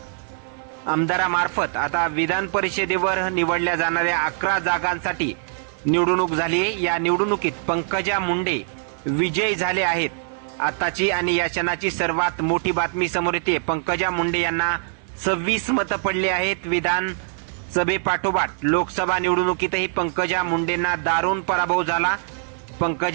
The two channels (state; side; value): silent; left; 63 dB below the other